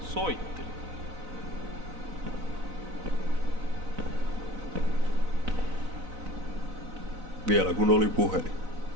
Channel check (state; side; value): late; left; 4.0 ms